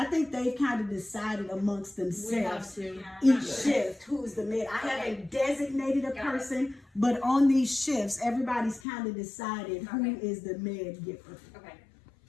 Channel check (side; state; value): right; drops out; at 8.8 s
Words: think they've kind of decided amongst we have themselves to. each shift who's the med. I haven't designated a Got it. person, but on these shifts, everybody's kind of decided who Okay. is the med giver. Okay.